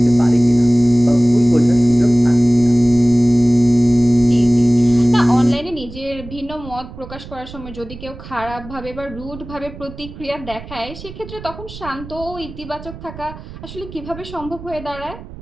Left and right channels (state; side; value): noise; right; rumble, 15 dB below the sound